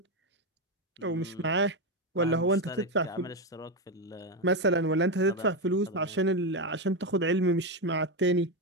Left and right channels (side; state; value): both; normal; correlation 0.10